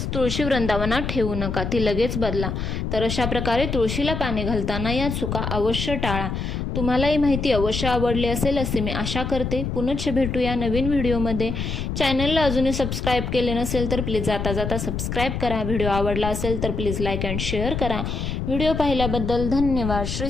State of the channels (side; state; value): left; noise; rumble, 3 dB below the sound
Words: तुळशी वृंदावनात ठेवू नका, ती लगेच बदला. तर अशा प्रकारे तुळशीला पाणी घालताना या चुका अवश्य टाळा. तुम्हाला ही माहिती अवश्य आवडली असेल असे मी आशा करते. पुनश्च भेटूया नवीन व्हिडिओमध्ये. चॅनलला अजूनही सबस्क्राईब केले नसेल तर प्लीज जाता जाता सबस्क्राईब करा. व्हिडिओ आवडला असेल तर प्लीज लाईक अँड शेअर करा. व्हिडिओ पाहिल्याबद्दल धन्यवाद. श्री